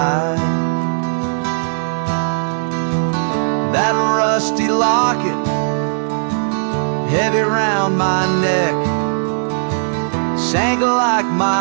That rusty locket, heavy round my neck, sank like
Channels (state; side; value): silent; left; digital silence